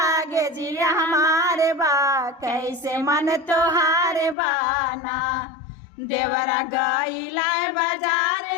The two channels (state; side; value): drops out; right; at 4.4 s